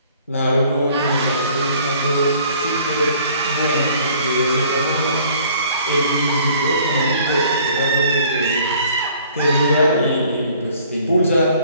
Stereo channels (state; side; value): inverted; both; correlation -0.56